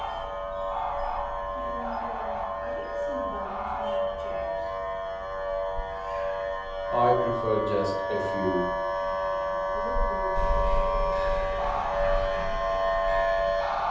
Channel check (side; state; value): both; identical; correlation 1.00